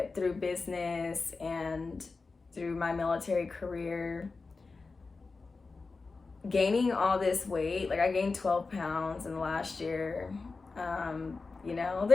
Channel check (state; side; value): quieter; right; 4.1 dB